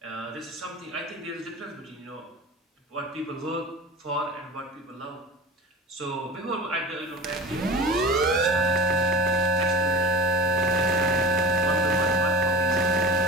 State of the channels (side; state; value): both; normal; correlation 0.32